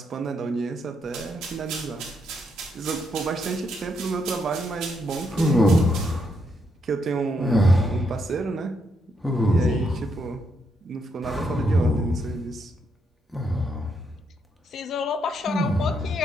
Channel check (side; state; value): both; normal; correlation 0.78